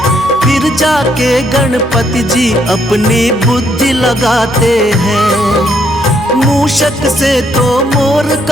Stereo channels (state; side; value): normal; both; correlation 0.72